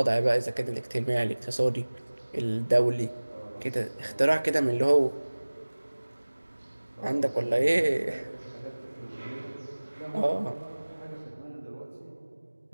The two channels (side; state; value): both; inverted; correlation -1.00